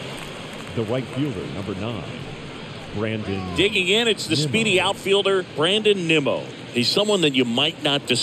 the right fielder, number 9, Brandon. Digging in, it's the Nimmo. speedy outfielder, Brandon Nimmo. He's someone that you might not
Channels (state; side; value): identical; both; correlation 1.00